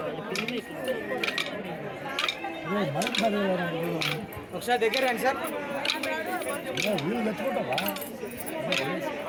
ఒకసారి దగ్గర రండి సార్.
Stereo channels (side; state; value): both; identical; correlation 1.00